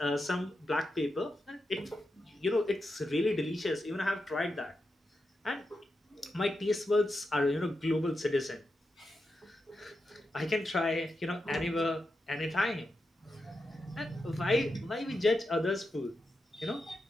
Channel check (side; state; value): both; normal; correlation 0.88